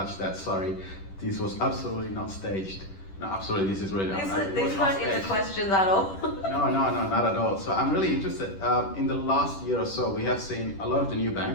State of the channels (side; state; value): right; late; 10 ms